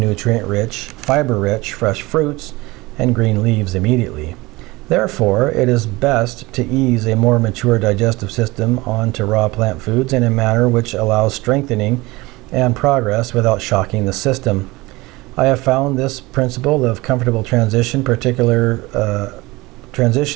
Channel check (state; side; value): quieter; left; 21.6 dB